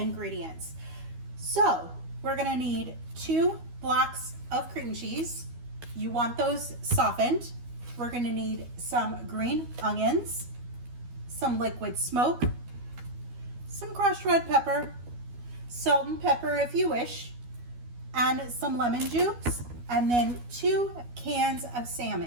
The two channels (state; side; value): late; left; 12 ms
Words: So we're going to need 2 blocks of cream cheese. You want those softened. We're going to need some green onions, some liquid smoke, some crushed red pepper, salt and pepper if you wish, and some lemon juice, and then 2 cans of